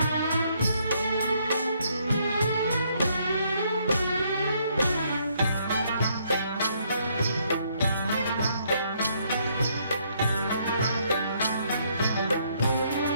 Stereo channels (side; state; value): both; inverted; correlation -0.70